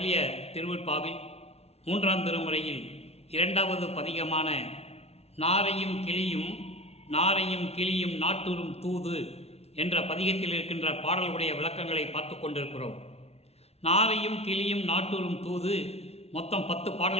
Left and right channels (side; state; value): right; late; 0.30 ms